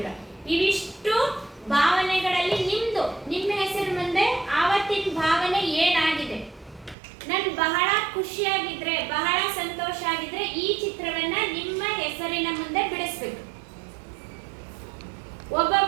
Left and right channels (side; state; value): left; drops out; at 7.0 s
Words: ಇವಿಷ್ಟು ಭಾವನೆಗಳಲ್ಲಿ ನಿಮ್ಮ ಹೆಸರು ಮುಂದೆ ಆವತ್ತಿನ ಭಾವನೆ ಏನಾಗಿದೆ. ನಾನು ಬಹಳ ಖುಷಿಯಾಗಿದ್ರೆ, ಬಹಳ ಸಂತೋಷ ಆಗಿದ್ರೆ ಈ ಚಿತ್ರವನ್ನ ನಿಮ್ಮ ಹೆಸರಿನ ಮುಂದೆ ಬಿಡಿಸ್ಬೇಕು.